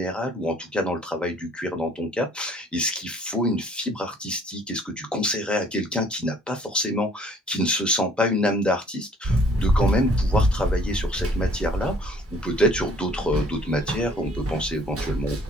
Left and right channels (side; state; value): both; normal; correlation 0.57